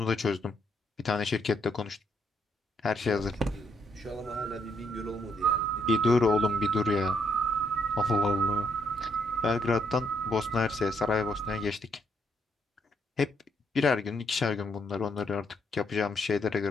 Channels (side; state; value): both; normal; correlation 0.74